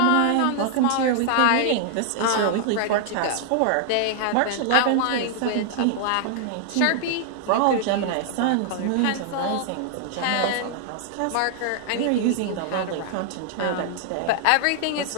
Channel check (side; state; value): both; different; correlation -0.01